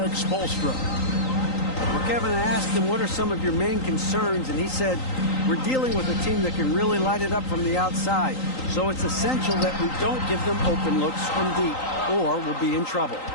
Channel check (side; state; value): right; late; 3.9 ms